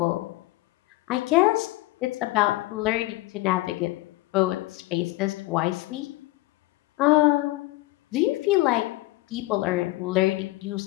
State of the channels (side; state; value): right; quieter; 18.6 dB